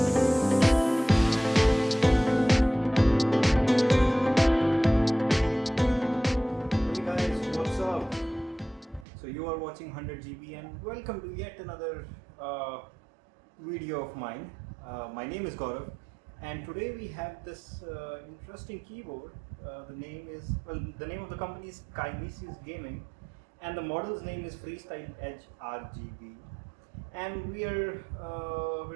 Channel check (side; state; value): left; drops out; at 9.1 s